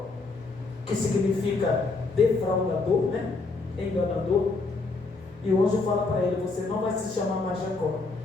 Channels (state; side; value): quieter; right; 3.7 dB